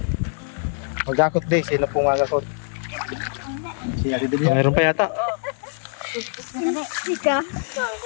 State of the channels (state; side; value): silent; right; 61 dB below the other